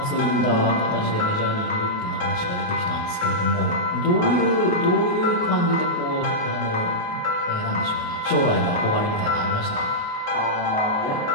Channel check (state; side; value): late; right; 28 ms